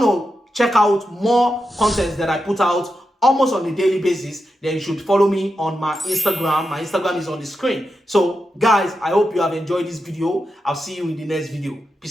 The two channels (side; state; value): both; normal; correlation 0.88